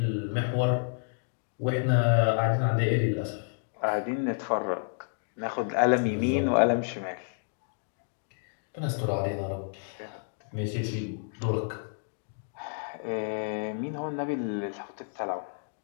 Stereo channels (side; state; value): right; silent; digital silence